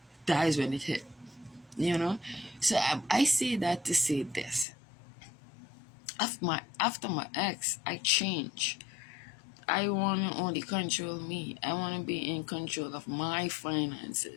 that is when it hit. So I say that to say this. After my ex, I changed. I want to only control me. I want to be in control of my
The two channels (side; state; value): right; drops out; at 4.7 s